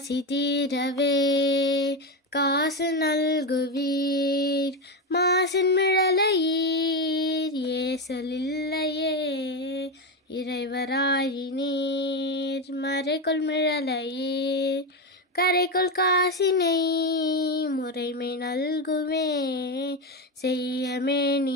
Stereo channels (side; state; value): both; normal; correlation 0.13